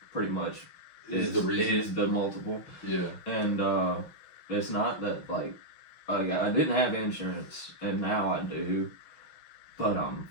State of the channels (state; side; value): late; right; 6.3 ms